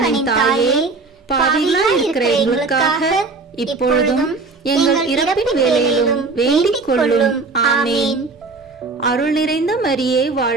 தாயே, பாவிகளாய் இருக்கிற எங்களுக்காக இப்பொழுதும் எங்கள் இறப்பின் வேளையிலும் வேண்டிக் கொள்ளும். ஆமேன். அருள் நிறைந்த மரியே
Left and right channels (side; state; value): left; quieter; 3.9 dB